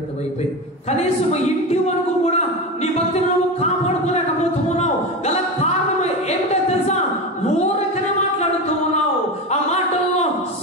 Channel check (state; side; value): normal; both; correlation 0.22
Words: అయిపోయింది. కనీసం ఇంటి వరకు కూడా నీ భక్తి నువ్వు కాపాడుకోలేకపోతున్నావు. గల కారణం ఏమిటో తెలుసా? ఊరకనే మాట్లాడుతూ ఉన్నావు. ఆ మాటల్లో